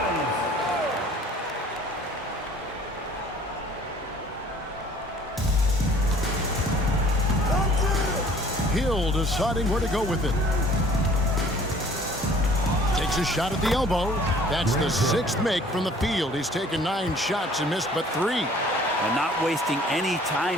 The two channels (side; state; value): both; normal; correlation 0.53